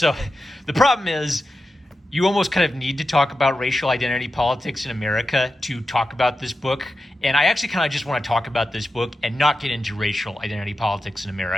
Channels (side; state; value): both; normal; correlation 0.91